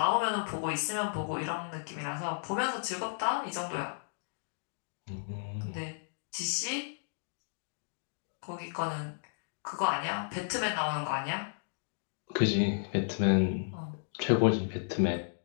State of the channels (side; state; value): right; silent; digital silence